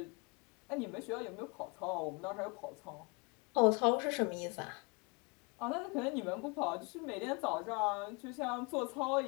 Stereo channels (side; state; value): right; quieter; 31.1 dB